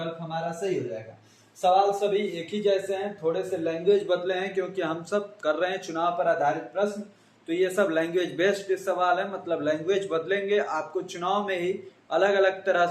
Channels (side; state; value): both; identical; correlation 1.00